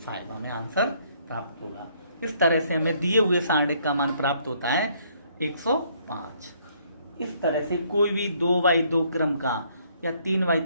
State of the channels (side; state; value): both; inverted; correlation -0.66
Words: हमें आंसर प्राप्त होगा। इस तरह से हमें दिए हुए सारणिक का मान प्राप्त होता है 105। इस तरह से कोई भी 2/2 क्रम का या